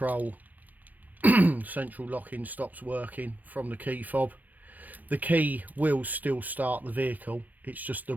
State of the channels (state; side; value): late; left; 0.084 ms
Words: central locking stops working from the key fob. The key will still start the vehicle, it's just the